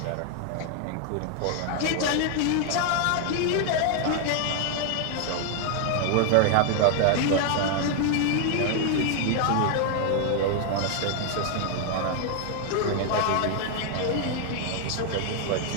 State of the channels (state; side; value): different; both; correlation 0.00